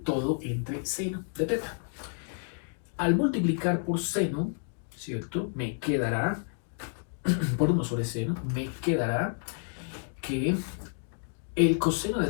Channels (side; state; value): right; silent; digital silence